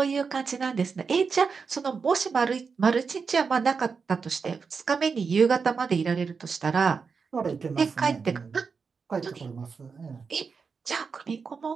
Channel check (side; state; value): left; quieter; 5.3 dB